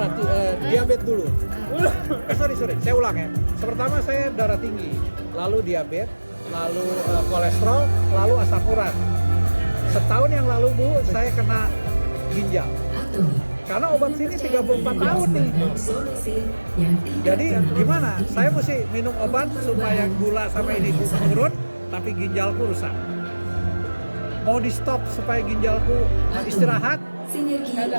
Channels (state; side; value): inverted; both; correlation -1.00